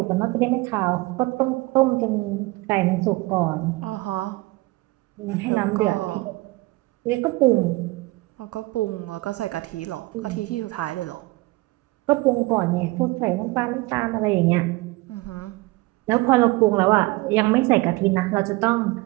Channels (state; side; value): quieter; left; 22.1 dB